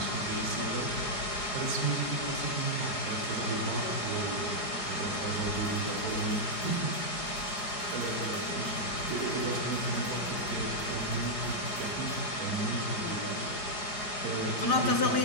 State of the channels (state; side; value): late; right; 4.8 ms